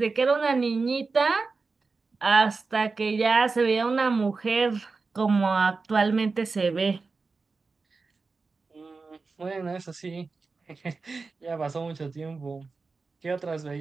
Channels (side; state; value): left; quieter; 4.2 dB